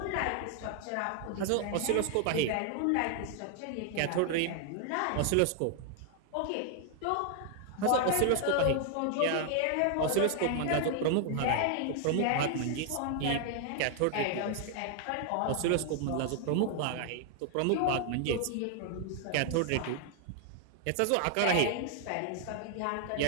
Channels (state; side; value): different; both; correlation 0.00